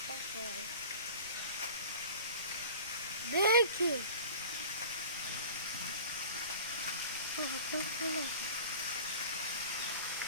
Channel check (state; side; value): inverted; both; correlation -0.41